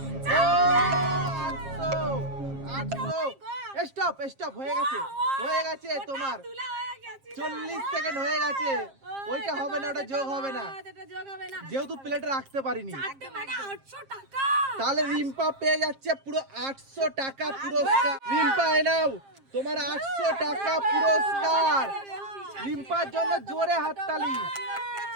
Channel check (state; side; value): late; left; 7.5 ms